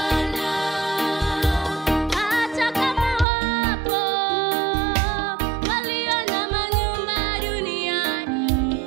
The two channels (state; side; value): drops out; left; at 3.2 s